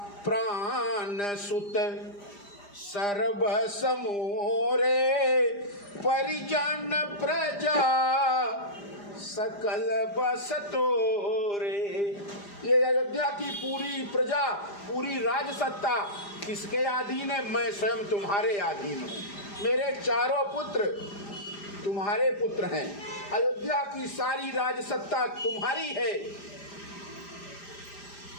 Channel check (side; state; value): right; late; 5.0 ms